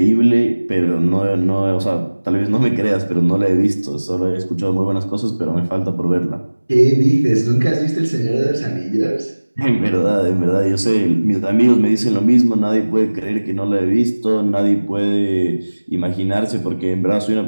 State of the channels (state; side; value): inverted; both; correlation -1.00